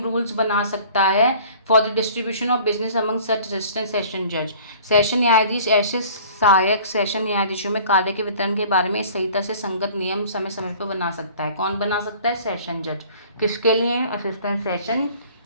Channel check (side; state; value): both; inverted; correlation -0.48